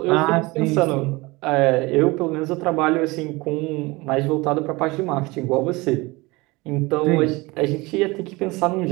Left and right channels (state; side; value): quieter; left; 23.3 dB